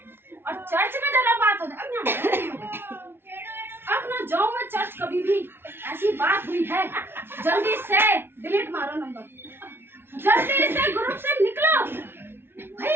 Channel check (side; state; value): left; late; 0.11 ms